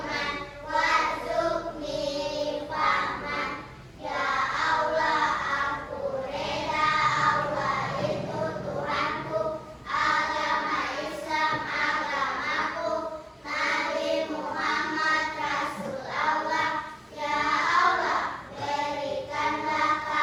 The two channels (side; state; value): both; identical; correlation 1.00